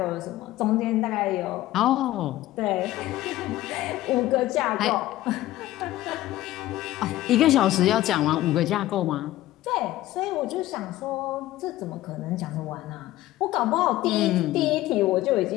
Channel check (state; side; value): quieter; right; 15.5 dB